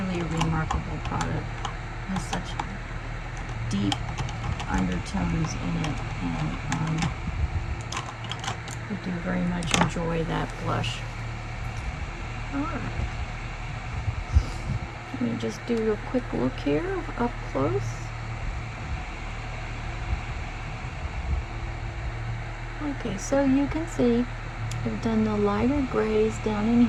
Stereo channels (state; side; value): identical; both; correlation 1.00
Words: a remarkable product. It has such deep undertones in it, and I do very much enjoy that blush. Alright. Let me just do a quick look here up close. Okay, so you can see I've done the lighter grays down in